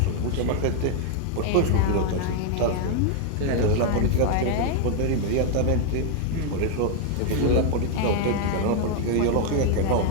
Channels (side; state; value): both; different; correlation 0.00